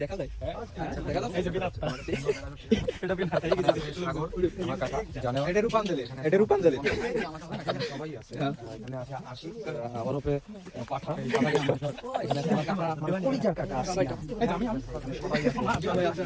যায় দেখা যায় এটা বিন হাতে গেছে সাগর আমার কাকা জানে এটা রূপাঞ্জলি সবাই আছে এখানে আছে আশিক আমার উপরে পাঠা এখানে আমরা পরিচয় কাকা সবাই আছে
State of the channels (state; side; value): identical; both; correlation 1.00